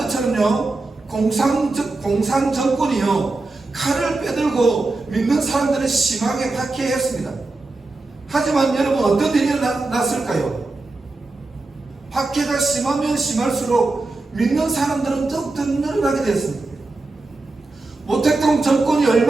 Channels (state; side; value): quieter; left; 3.3 dB